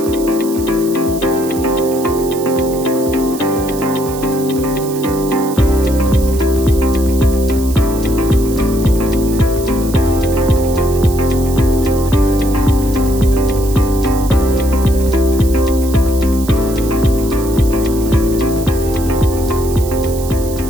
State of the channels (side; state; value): right; noise; hiss, 14 dB below the sound